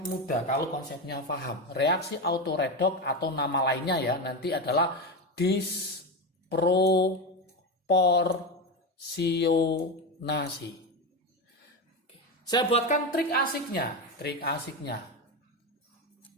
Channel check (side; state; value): both; normal; correlation 0.16